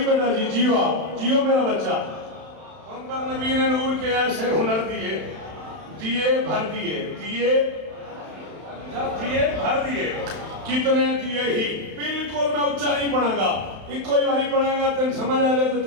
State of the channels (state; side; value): late; left; 31 ms